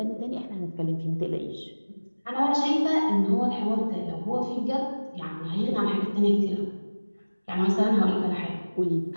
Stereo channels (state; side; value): inverted; both; correlation -1.00